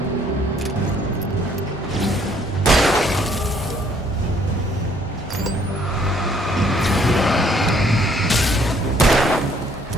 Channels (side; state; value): both; normal; correlation 0.64